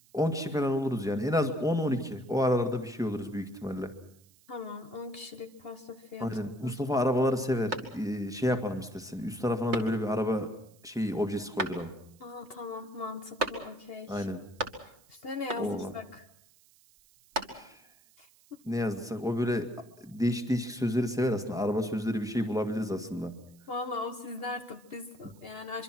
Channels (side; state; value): right; noise; hiss, 29 dB below the sound